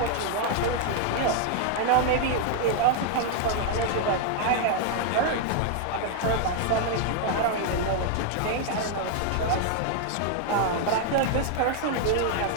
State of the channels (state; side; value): different; both; correlation 0.00